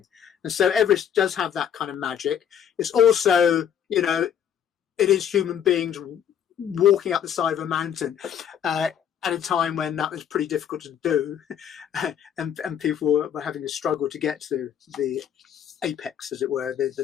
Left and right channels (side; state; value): right; quieter; 8.9 dB